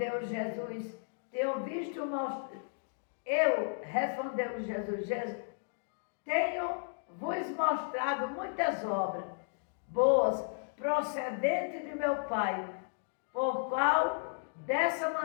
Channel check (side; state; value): right; silent; digital silence